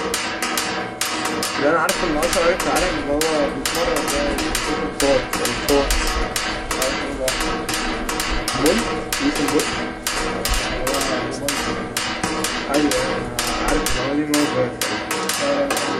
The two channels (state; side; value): identical; both; correlation 1.00